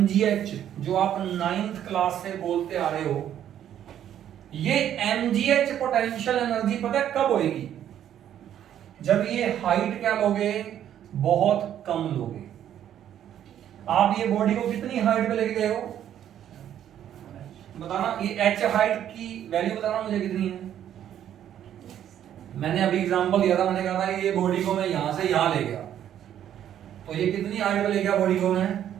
जो आप 9th क्लास से बोलते आ रहे हो, ये mgh पोटेंशियल एनर्जी पता है कब होएगी? जब ये हाइट क्या लोगे, बहुत कम लोगे। आप ये बॉडी को कितनी हाइट पे लेके गए हो बताना, ये h हाइट की वैल्यू बताना मुझे कितनी है। मैंने अभी एग्जांपल दिया था, मैंने कहा था ये बॉडी को मैं यहां से यहां ले गया, तो ये कितनी हाइट पे ले गया बॉडी को मैं?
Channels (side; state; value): left; quieter; 10.5 dB